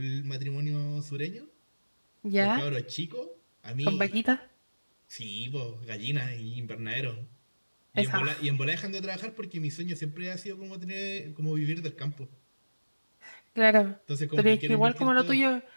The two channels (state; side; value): inverted; both; correlation -1.00